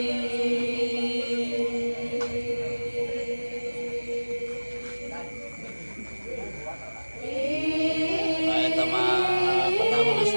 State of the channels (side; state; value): both; inverted; correlation -1.00